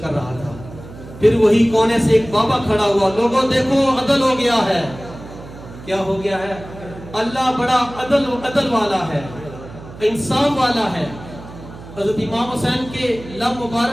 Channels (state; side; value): noise; right; hum, 16 dB below the sound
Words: رہا تھا۔ پھر وہی کونے سے ایک بابا کھڑا ہوا، لوگوں دیکھو عدل ہو گیا ہے۔ کیا ہو گیا ہے؟ اللہ بڑا عدل والا ہے، انصاف والا ہے۔ حضرت امام حسین کے لب